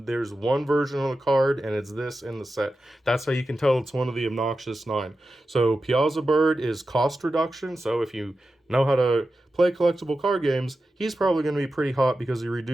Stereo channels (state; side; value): normal; both; correlation 0.92